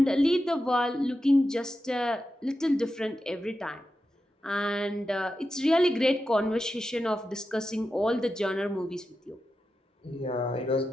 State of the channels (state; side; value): normal; both; correlation 0.90